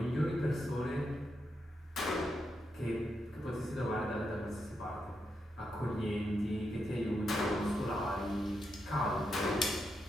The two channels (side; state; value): both; normal; correlation 0.84